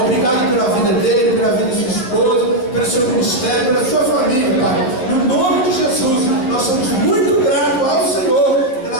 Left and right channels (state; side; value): late; right; 11 ms